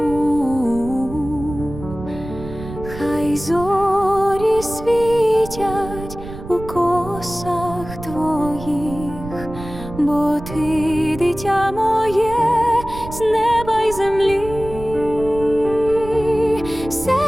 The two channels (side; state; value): right; noise; rumble, 12 dB below the sound